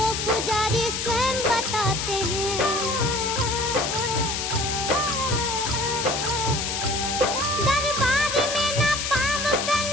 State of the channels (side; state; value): left; noise; hiss, 2 dB below the sound